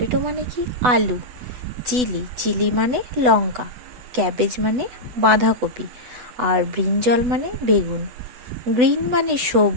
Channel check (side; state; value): left; late; 8.1 ms